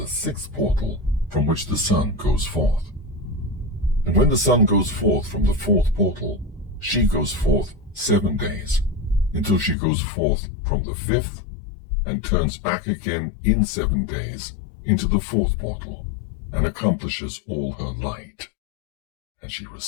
6th portal from which the sun goes forth. And when the sun goes forth from the 4th portal, she goes forth 7 days, until she goes forth from the 5th, and turns back again in 7 days into the 4th portal, and accomplishes all her light. And she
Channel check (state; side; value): drops out; right; at 9.8 s